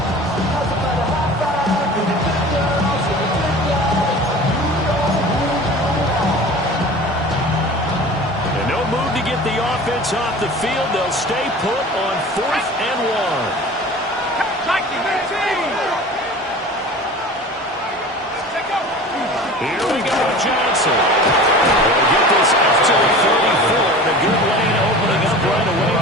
Off the field, they'll stay put on 4th and 1. Johnson. They'll get this up to the 34, and a good lane opening up right away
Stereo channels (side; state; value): both; normal; correlation 0.39